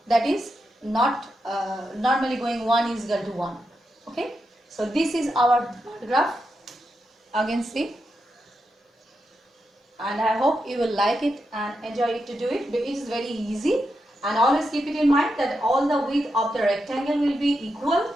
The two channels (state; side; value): normal; both; correlation 0.86